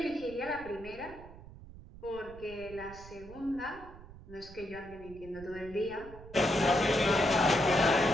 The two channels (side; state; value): right; noise; rumble, 17 dB below the sound